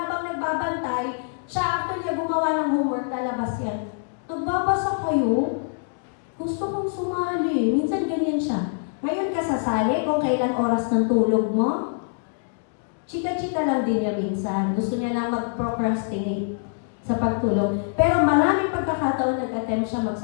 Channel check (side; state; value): right; silent; digital silence